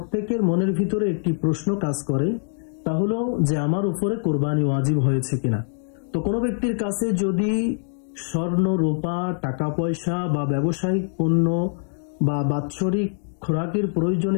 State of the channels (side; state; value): right; silent; digital silence